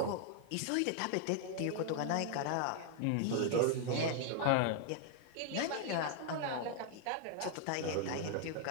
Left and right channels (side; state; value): both; different; correlation 0.00